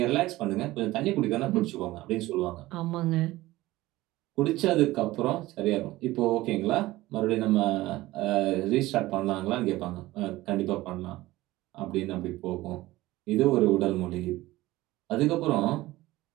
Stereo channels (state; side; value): quieter; left; 17.8 dB